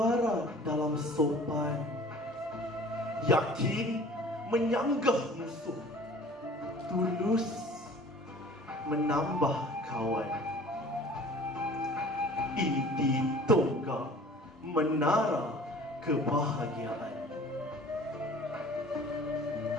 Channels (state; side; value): normal; both; correlation 0.47